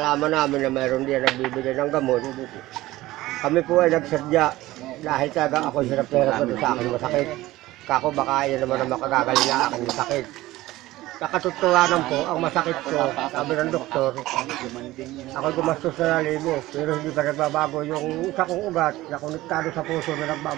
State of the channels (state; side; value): quieter; left; 17.3 dB